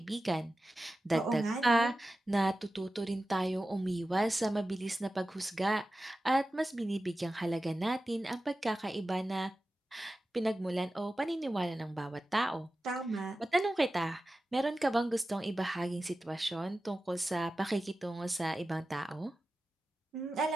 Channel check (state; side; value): normal; both; correlation 0.94